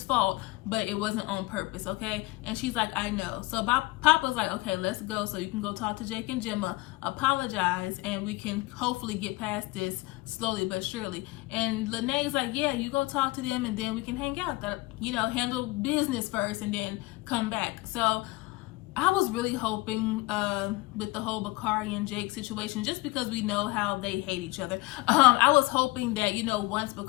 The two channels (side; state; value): right; quieter; 21.5 dB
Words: fault, but it wasn't on purpose, okay? And she's like, I know. So Papa's like, okay, let's go so you can go talk to Jake and Gemma, apologize, and we can hopefully get past this slowly but surely. And Lene's like, yeah, you go talk to them and then we can hang out. That, you know, handle business first and then come back. So I was really hoping with the whole Bakari and Jake situation, just because we know how they hate each other, I was hoping that, you know, once